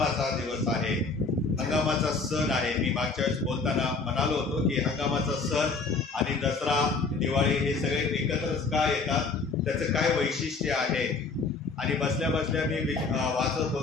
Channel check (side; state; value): right; quieter; 4.2 dB